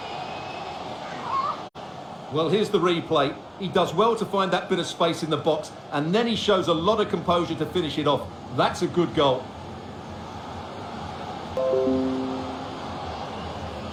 Well, here's the replay. He does well to find that bit of space in the box, and then he shows a lot of composure to finish it off. That's a good goal.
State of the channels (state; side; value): identical; both; correlation 1.00